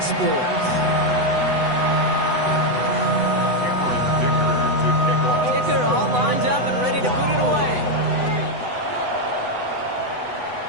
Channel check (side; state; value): left; late; 8.0 ms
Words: Sports. Kicker all lined up and ready to put it away.